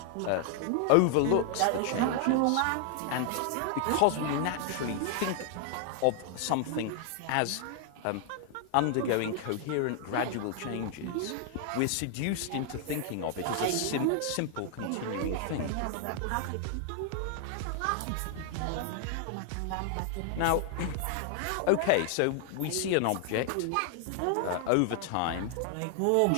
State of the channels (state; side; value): different; both; correlation 0.00